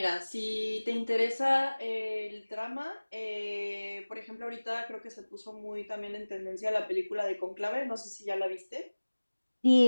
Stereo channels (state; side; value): inverted; both; correlation -1.00